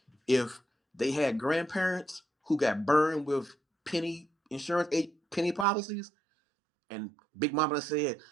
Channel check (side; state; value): left; drops out; at 5.7 s